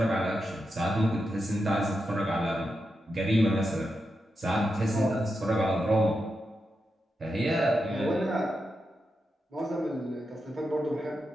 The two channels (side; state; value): both; normal; correlation 0.87